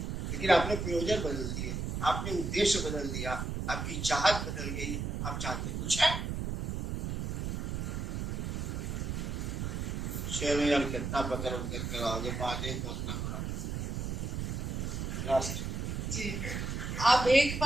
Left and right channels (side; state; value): right; noise; rumble, 2 dB below the sound